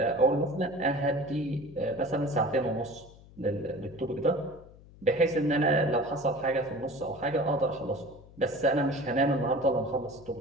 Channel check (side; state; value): left; noise; hum, 22 dB below the sound